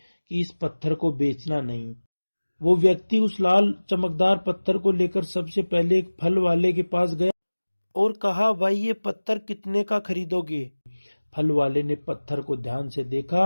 इस पत्थर को बेचना नहीं। वो व्यक्ति उस लाल चमकदार पत्थर को लेकर सबसे पहले एक फल वाले के पास गया और कहा, भाई ये पत्थर कितने का खरीदोगे। फल वाले ने पत्थर को ध्यान से देखा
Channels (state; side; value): inverted; both; correlation -1.00